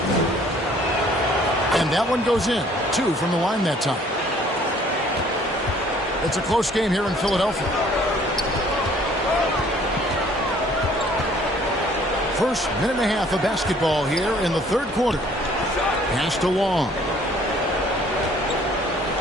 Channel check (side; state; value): both; normal; correlation 0.57